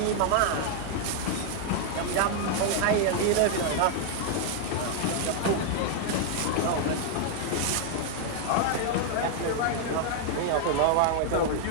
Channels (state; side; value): different; both; correlation -0.01